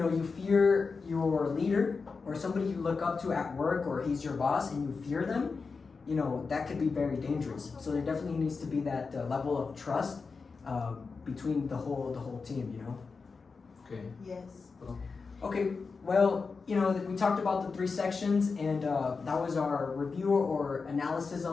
you fear your leader or somebody you look up to at work, or he's your boss and you fear them, you know, that could be very dangerous. So there definitely needs to be that level of trust between the whole team, you know. Okay. Yes. Okay, well, you know, we talked about the 3 sections, and that was our review or analysis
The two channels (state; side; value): quieter; right; 4.7 dB